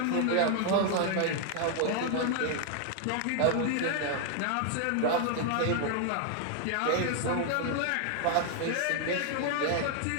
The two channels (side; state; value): both; different; correlation 0.00